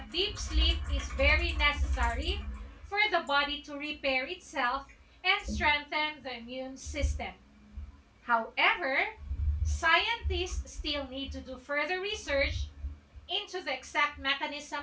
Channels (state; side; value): identical; both; correlation 1.00